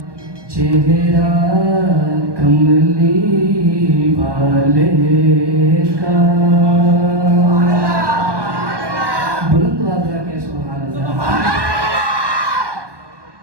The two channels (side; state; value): left; late; 1.2 ms